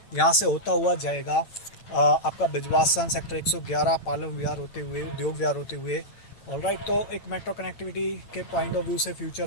यहाँ से होता हुआ जाएगा आपका बिजवासन, सेक्टर 111, पालम विहार होते हुए, उद्योग विहार होते हुए। ऑलराइट, तो एक मेट्रो कनेक्टिविटी के पॉइंट ऑफ व्यू से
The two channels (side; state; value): right; late; 8.9 ms